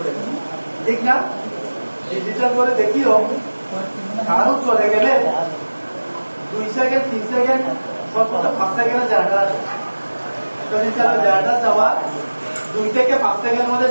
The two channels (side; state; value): both; inverted; correlation -1.00